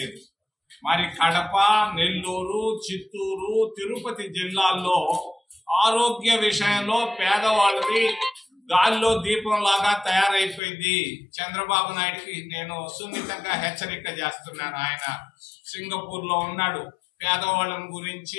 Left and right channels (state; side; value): drops out; right; at 10.6 s